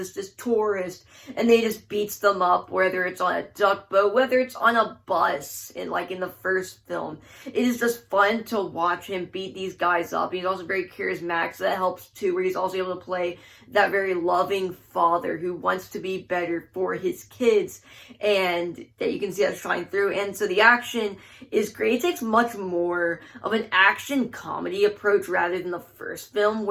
this tourist, and they just beats them up, whether it's on a duck boat, whether it's on a bus, like in the first film. It is just fun to watch him beat these guys up. He's also very charismatic, so that helps too, where he's also able to play that very loving father who wants to be better for his kids, and that you can see that shine through. And so the action is great. It takes much more of an action comedy approach rather than the first film,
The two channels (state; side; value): identical; both; correlation 1.00